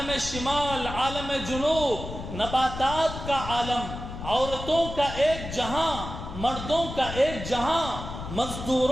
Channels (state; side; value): noise; left; rumble, 9 dB below the sound